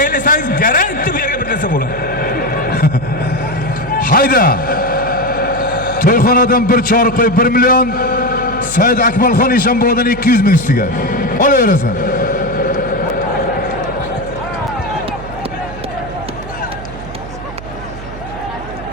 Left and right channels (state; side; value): noise; right; hum, 13 dB below the sound